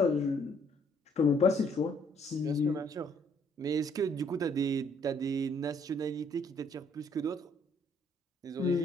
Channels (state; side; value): normal; both; correlation 0.66